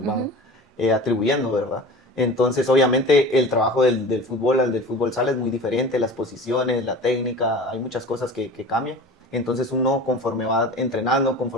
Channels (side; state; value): both; normal; correlation 0.36